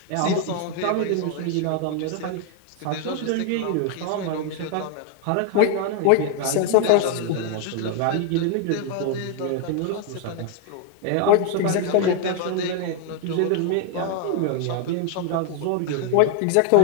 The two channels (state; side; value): different; both; correlation 0.00